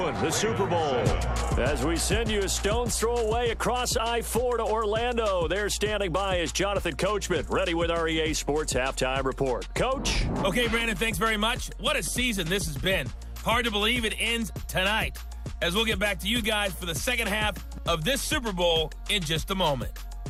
the Super Bowl. As we send you a stone's throw away across I-4 to Orlando. There standing by is Jonathan Coachman, ready with our EA Sports Halftime Report. Coach? Okay, Brandon, thanks very much. What a season this has been. Hard to believe it ends tonight, as we'll get back to you guys for the second half of this Super Bowl in just a moment.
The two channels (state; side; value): identical; both; correlation 1.00